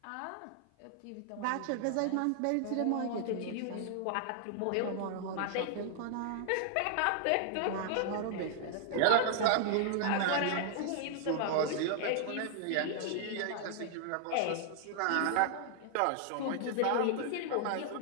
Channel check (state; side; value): different; both; correlation 0.00